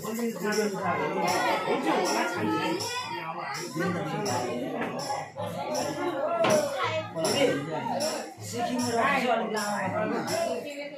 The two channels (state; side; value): identical; both; correlation 1.00